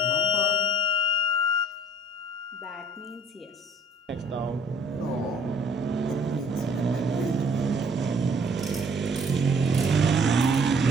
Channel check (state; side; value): normal; both; correlation 0.57